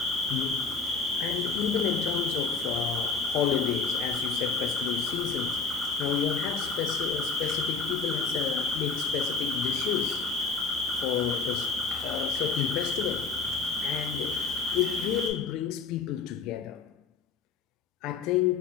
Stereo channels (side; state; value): right; quieter; 4.8 dB